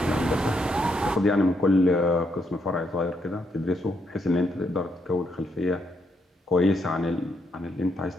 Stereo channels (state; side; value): normal; both; correlation 0.77